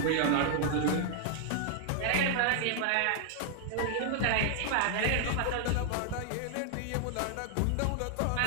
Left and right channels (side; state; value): both; different; correlation 0.00